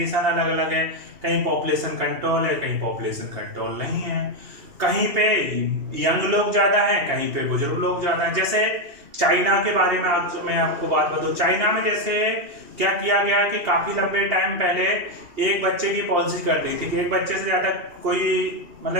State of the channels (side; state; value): left; late; 2.8 ms